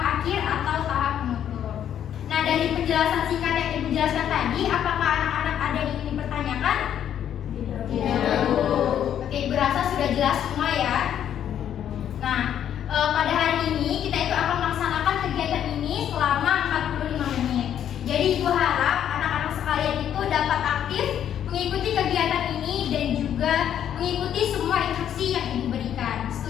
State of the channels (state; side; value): quieter; right; 9.9 dB